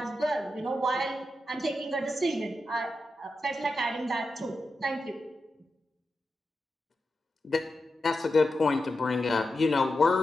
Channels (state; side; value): normal; both; correlation 0.89